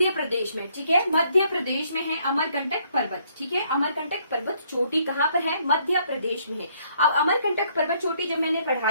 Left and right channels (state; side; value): inverted; both; correlation -0.67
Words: प्रदेश में, ठीक है, मध्य प्रदेश में है अमरकंटक पर्वत, ठीक है। अमरकंटक पर्वत चोटी कहाँ पर है? मध्य प्रदेश में है। अब अमरकंटक पर्वत चोटी जब मैंने